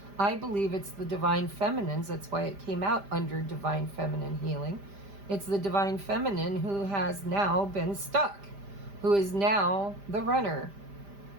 I believe it's the Divine Feminines. That's why it came out under Divine Feminine Healing. It's the Divine Feminine who has now been stuck, who is now the runner.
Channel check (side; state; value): left; late; 5.0 ms